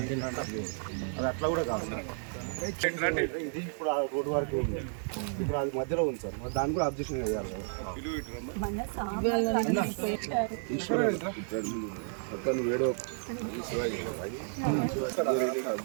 చేసింది అంటే అది అట్లా కూడా కాదు. ఇది ఇప్పుడు ఆ రోడ్డు వరకు ఉంది, ఇప్పుడు అది మధ్యలో ఉంది సార్. మరి దాన్ని కూడా అబ్జెక్షన్ చేయాలి. అక్కడ వేడో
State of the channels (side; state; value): left; silent; digital silence